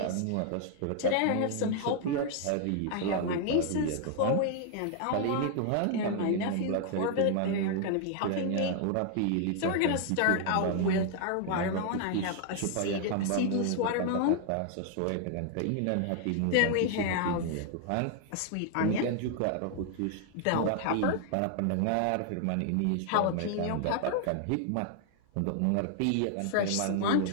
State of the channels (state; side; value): different; both; correlation 0.00